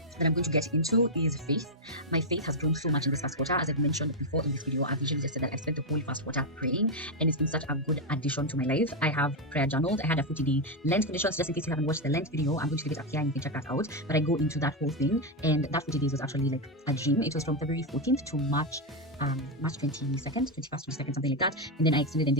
that I'm going to get into is faith. My faith has grown so much in this first quarter. As I've mentioned before in this video, I've usually just said that I've spent the whole first quarter praying, and it's been such a good addition to my life. I have prayer journaled. I had a 40-day Lent conditions. Just in case you haven't watched the Lent video, I'm going to leave it up here and you can check that out. But I go into that whole thing, and that 40 days was actually like a dream. It was from February 14th to March 22nd, 21st, 22nd, something like that. And then I extended and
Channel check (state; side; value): normal; both; correlation 0.03